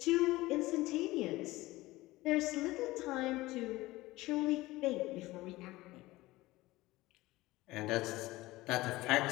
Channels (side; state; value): right; quieter; 18.9 dB